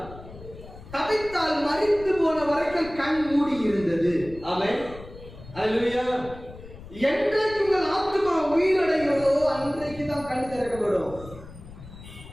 தவித்தால் மறித்து போன வரைக்கும் கண் மூடி இருந்தது. ஆமென். அல்லேலூயா. என்றைக்கு உங்கள் ஆத்மா உயிரடைகிறதோ அன்றைக்கு தான் கண் திறக்கப்படும்.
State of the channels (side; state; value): left; noise; rumble, 16 dB below the sound